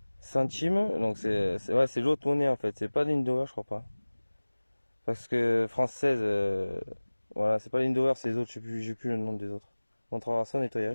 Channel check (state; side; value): inverted; both; correlation -1.00